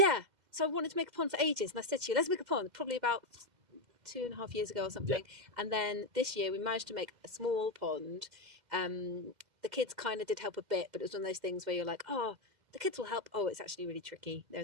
So I wanted to make a pond for ages, and I said to you, let's make a pond, probably about 2.5 years ago or something. Yeah. And then this year we managed to make a small pond. The kids kind of did help a bit, but it was one of those things where you're like, oh, the kids will help. Oh, it's actually really tricky.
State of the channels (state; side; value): late; left; 2.0 ms